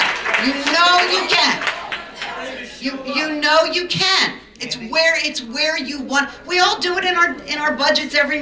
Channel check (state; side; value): identical; both; correlation 1.00